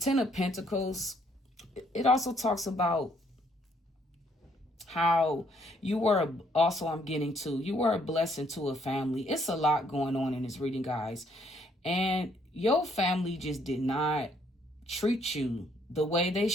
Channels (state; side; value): normal; both; correlation 0.67